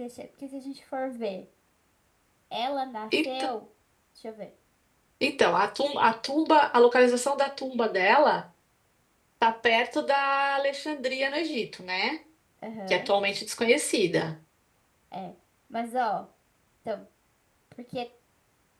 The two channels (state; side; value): identical; both; correlation 1.00